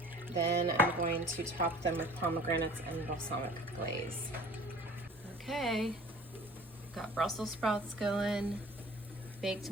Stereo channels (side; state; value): both; normal; correlation 0.46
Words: Then I'm going to top them with pomegranates and balsamic glaze. Okay, got Brussel sprouts going, baked